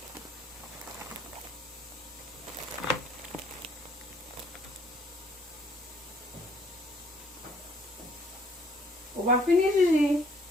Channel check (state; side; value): normal; both; correlation 0.63